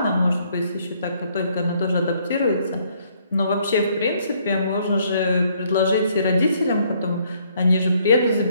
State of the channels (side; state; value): both; inverted; correlation -0.67